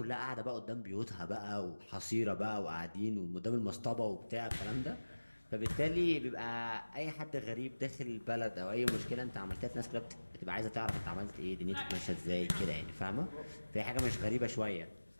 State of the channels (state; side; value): inverted; both; correlation -1.00